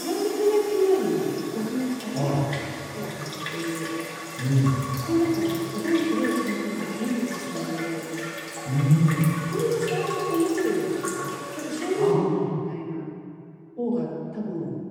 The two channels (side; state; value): both; identical; correlation 1.00